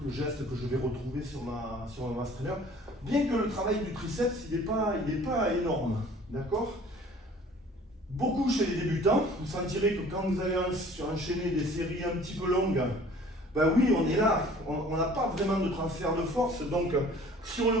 le geste que je vais retrouver sur ma mass trainer. Bien que le travail du triceps, il n'est pas énorme, d'accord? Beaucoup chez les débutants, vous sentirez que quand vous allez enchaîner des séries un petit peu longues, ben oui, on est là, on n'a pas vraiment de transfert de force, donc sur le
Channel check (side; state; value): both; normal; correlation 0.50